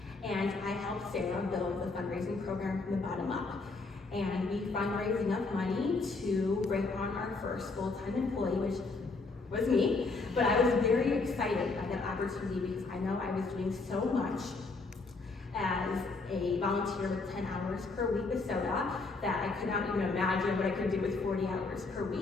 and I helped Sarah build the fundraising program from the bottom up. And we fundraised enough money to bring on our first full-time employee, which was me. But I was very excited by that opportunity because I know I was doing so much as a volunteer with 10 hours per week with SODA that I could not even imagine what I could do with 40 hours per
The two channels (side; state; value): right; quieter; 3.8 dB